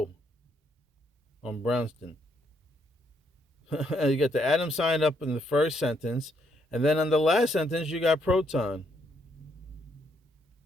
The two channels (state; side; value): normal; both; correlation 0.73